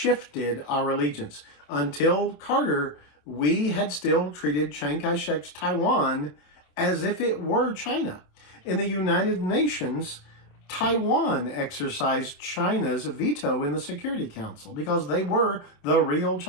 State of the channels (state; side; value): late; right; 27 ms